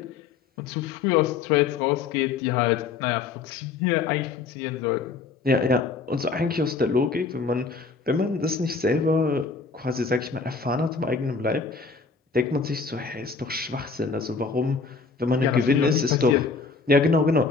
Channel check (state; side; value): quieter; right; 4.6 dB